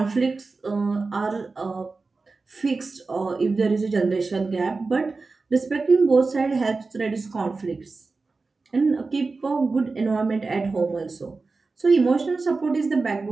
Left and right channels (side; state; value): left; quieter; 3.9 dB